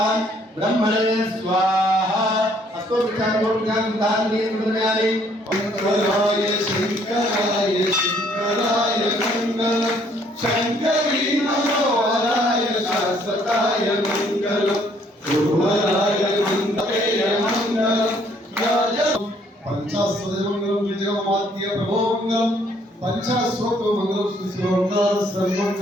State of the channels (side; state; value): both; normal; correlation 0.64